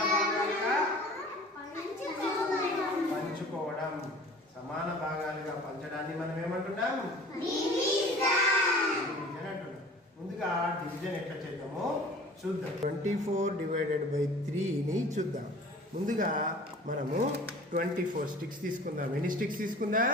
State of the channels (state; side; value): normal; both; correlation 0.44